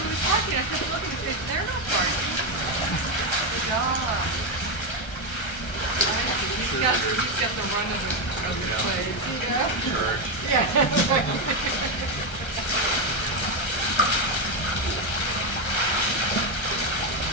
kept looking and said, they're not parking. Good job. He's got the run of the place. Yeah.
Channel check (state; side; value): late; right; 1.3 ms